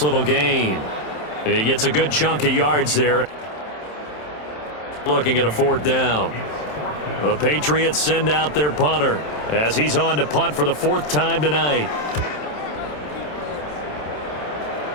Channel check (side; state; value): right; late; 27 ms